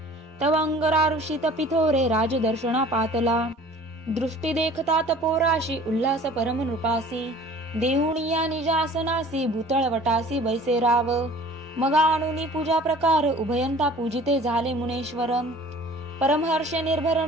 तव अंगरारुषी तपिथोरे राजदर्शना पातला. दृष्टी देखता तपोराशी उल्हास परम नृपासी देहुणिया निजासनासी भूतळ वटासी बैसे राव. मग आणुनी पूजा प्रकार उभयंता पूजिते झाले मुनेश्वर. परमहर्षे निर्भर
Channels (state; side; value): normal; both; correlation 0.47